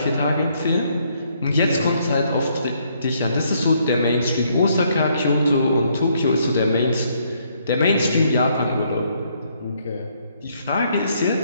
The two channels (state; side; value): inverted; both; correlation -0.70